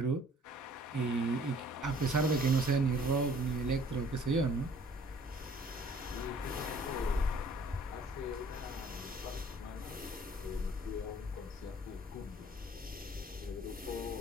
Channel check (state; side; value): normal; both; correlation 0.55